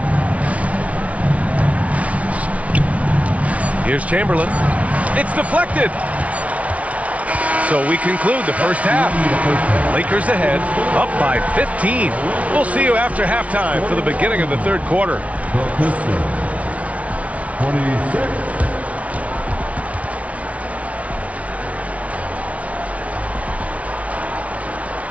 Here's Chamberlain. It's deflected. So we conclude the first half. Lakers ahead, up by 15. We'll see you after halftime for the beginning of the third quarter. The Pistons. 26.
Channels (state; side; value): late; left; 0.066 ms